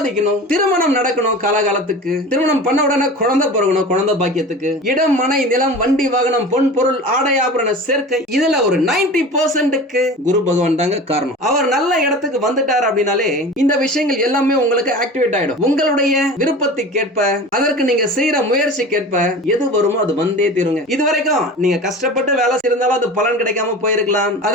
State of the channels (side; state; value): both; normal; correlation 0.35